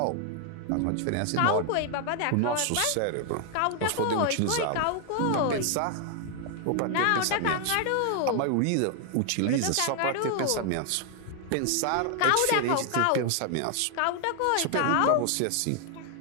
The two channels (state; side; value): different; both; correlation 0.00